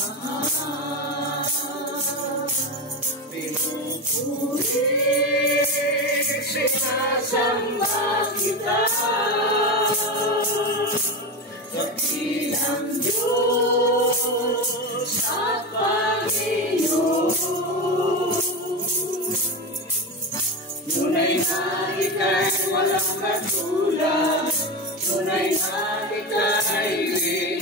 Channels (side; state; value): both; normal; correlation 0.19